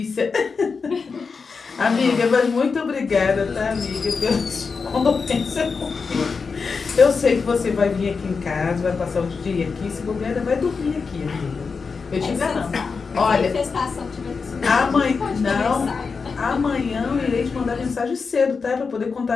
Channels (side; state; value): right; quieter; 5.0 dB